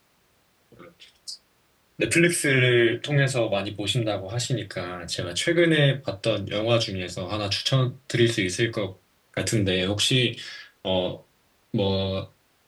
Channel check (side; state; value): both; identical; correlation 1.00